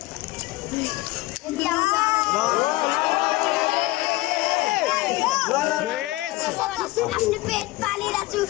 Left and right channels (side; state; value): right; quieter; 19.0 dB